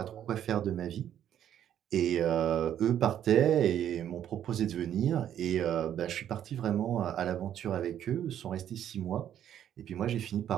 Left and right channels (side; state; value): left; quieter; 10.4 dB